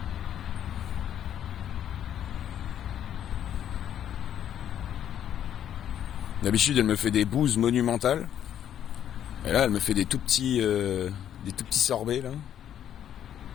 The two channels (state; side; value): quieter; right; 10.1 dB